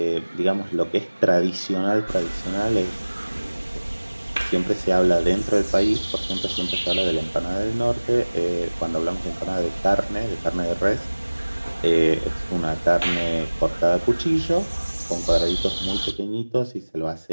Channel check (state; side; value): inverted; both; correlation -1.00